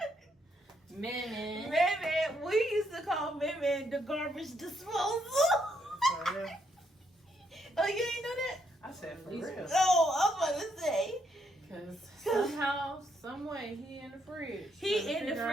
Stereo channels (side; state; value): both; normal; correlation 0.75